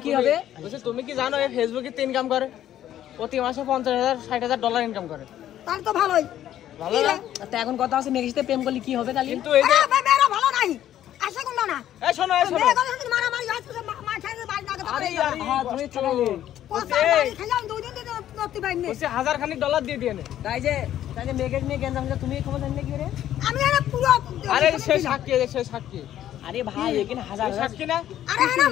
কি হবে? বলছে তুমি কি জানো এই ফেসবুকে ইনকাম করে প্রতি মাসে 50,000 60,000 ডলার ইনকাম করে। তাহলে তো ভালোই ভালো না? তা এখন কথা আছে মেয়ের সাথে প্রেম করলে কি হবে তাহলে? কিন্তু এই যে মেয়েরা ভালো নাই আসে কোন না এই শোনো মেয়ে কথা যদি মারামারি হয় তো মা খাইতে বাড়ি না আরে হ্যাঁ তুমি চালালে। কথা বাড়ি খেলাম দুই দিন দিতে নতি বাইনে বলছে 1000 খানিক ডলার দিয়ে দিয়ে নে। তাই যে মেয়েকে নিয়ে গেঞ্জাম হচ্ছে, তুমি খবর জানলে কি করে? আমি আরে পুরো আরে সে সাক্ষী আরে ভাই এখানে হাজার হাজার সাক্ষী না? আরে না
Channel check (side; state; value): right; quieter; 11.8 dB